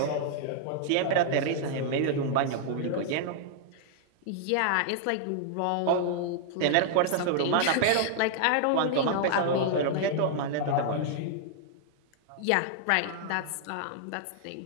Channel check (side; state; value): both; different; correlation -0.01